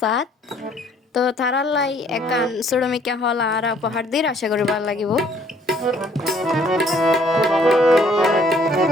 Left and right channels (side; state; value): both; normal; correlation 0.61